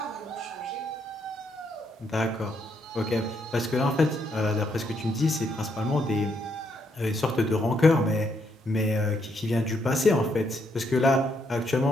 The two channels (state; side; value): normal; both; correlation 0.75